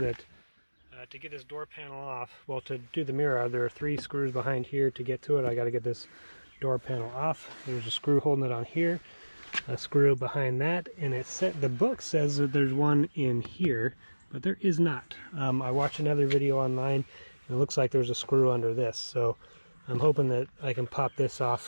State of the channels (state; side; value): inverted; both; correlation -1.00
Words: to get this door panel off, well, to do the mirror, there are 3 screws behind here to get to it. I got to get this door panel off. There's a screw holding it on here, a screw behind that, and the book says that there's one in here, but there is not. I watched another video online, and it looks like there's a screw under this, so I'm hoping that I can pop this